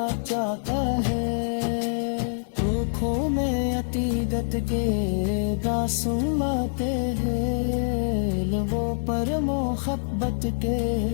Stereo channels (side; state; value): right; silent; digital silence